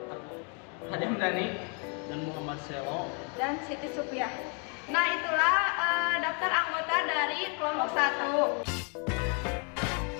Adam Dani, dan Muhammad Selo, dan Siti Supiah. Nah, itulah daftar anggota dari kelompok 1.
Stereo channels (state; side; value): quieter; right; 37.6 dB